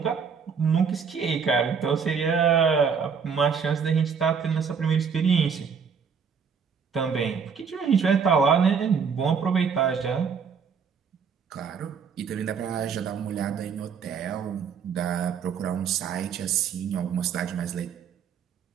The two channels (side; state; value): left; quieter; 6.3 dB